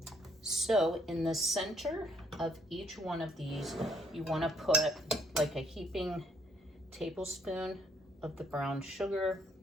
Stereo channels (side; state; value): both; normal; correlation 0.66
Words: So in the center of each one of these, you want to put like a heaping tablespoon of the brown sugar.